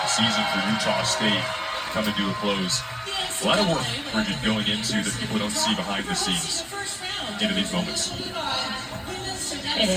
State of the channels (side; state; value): both; identical; correlation 1.00